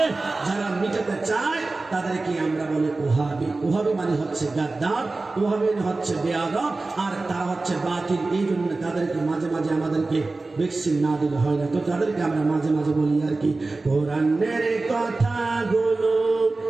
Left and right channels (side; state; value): left; quieter; 3.4 dB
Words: যারা মিটাতে চায় তাদেরকে আমরা বলি ওহাবি। ওহাবি মানে হচ্ছে গাদ্দার, ওহাবি মানে হচ্ছে বেয়াদব, আর তারা হচ্ছে বাতিল। এই জন্য তাদেরকে মাঝে মাঝে আমাদেরকে ভ্যাকসিন না দিলে হয় না, তো তাদেরকে আমরা মাঝে মাঝে বলি আর কি, কোরআনের কথাগুলো